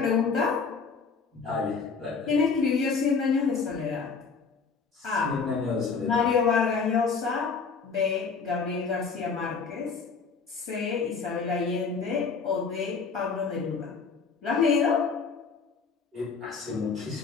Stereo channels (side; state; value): right; quieter; 5.2 dB